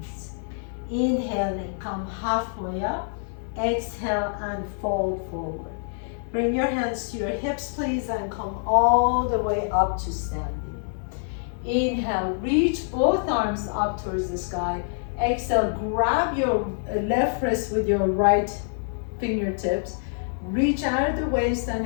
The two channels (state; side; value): silent; right; 58 dB below the other